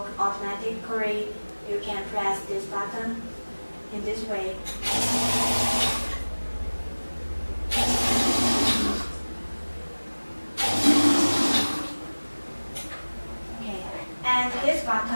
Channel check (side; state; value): both; inverted; correlation -1.00